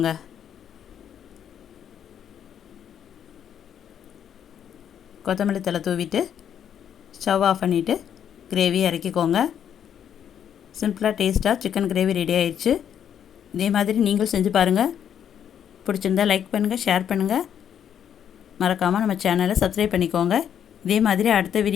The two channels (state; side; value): quieter; right; 9.0 dB